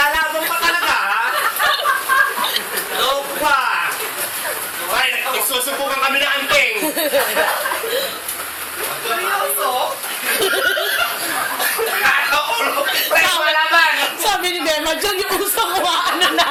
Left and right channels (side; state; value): both; identical; correlation 1.00